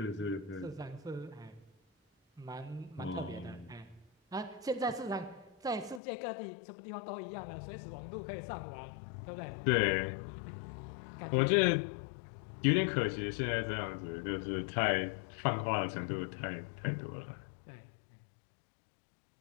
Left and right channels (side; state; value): right; drops out; at 6.0 s